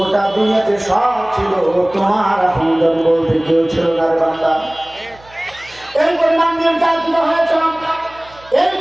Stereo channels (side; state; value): right; noise; hum, 25 dB below the sound